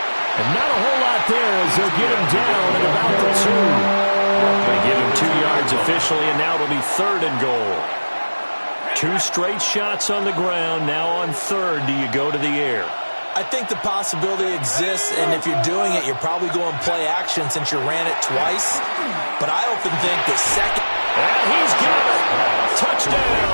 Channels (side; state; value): both; inverted; correlation -1.00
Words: not a whole lot there as they'll get him down at about the 2. They give him 2 yards officially, and now it'll be 3rd and goal. 2 straight shots on the ground. Now on 3rd, do you go to the air? I think the possibility exists, and if you're doing it, you're probably going play action since you ran it twice. But I often think that 2nd... And he's got it!